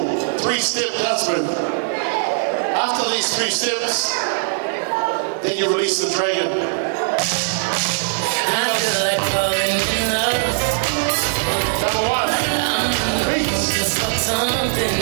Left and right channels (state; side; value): silent; left; digital silence